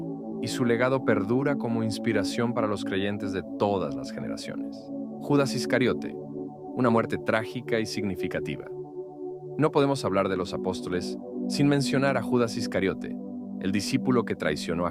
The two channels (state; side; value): identical; both; correlation 1.00